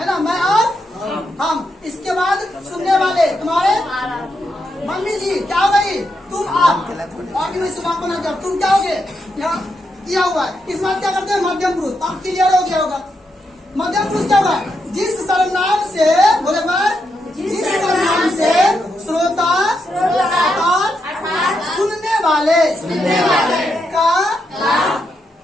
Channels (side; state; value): both; normal; correlation 0.82